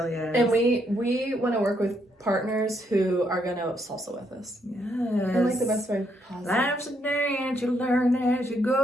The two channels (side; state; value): both; normal; correlation 0.74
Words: is. And we want to work with partners who are going to salsa with us. Yes. And the best way possible. Life's a dance, you learn as you